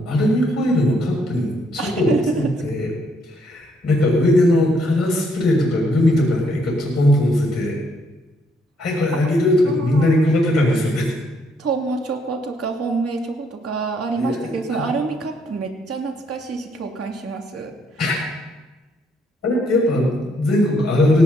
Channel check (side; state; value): both; normal; correlation 0.71